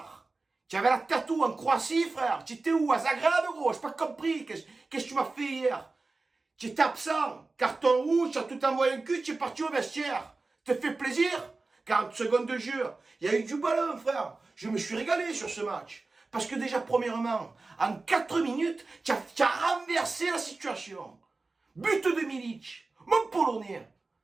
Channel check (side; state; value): left; quieter; 3.6 dB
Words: tu avais la tête où en Croatie, frère? Tu étais où? À Zagreb, gros? J'ai pas compris. Qu'est-ce que tu m'as fait hier? Tu étais absent, carton rouge, tu as tout envoyé un cul, tu es parti au vestiaire. Te fait plaisir? 40 secondes de jeu. Il y a eu du ballon, frère. Je me suis régalé sur ce match. Parce que déjà, premièrement, en 4 minutes, tu as renversé la situation. But de Milic, mon Polonais.